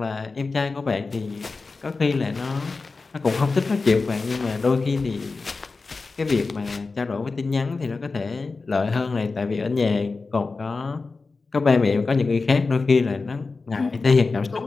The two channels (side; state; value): right; quieter; 4.0 dB